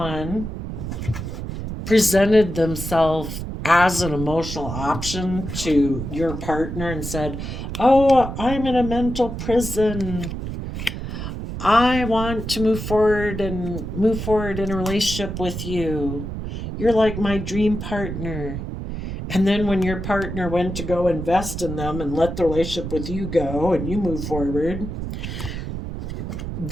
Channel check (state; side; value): noise; right; rumble, 6 dB below the sound